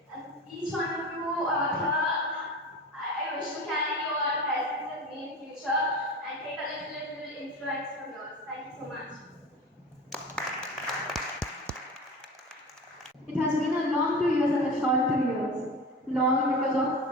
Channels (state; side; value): normal; both; correlation 0.32